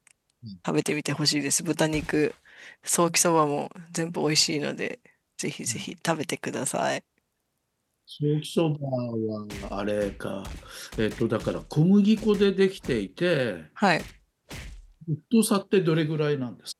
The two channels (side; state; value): both; identical; correlation 1.00